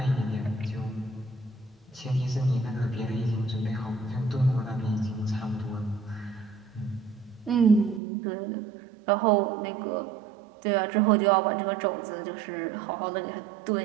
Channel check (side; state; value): left; drops out; at 8.0 s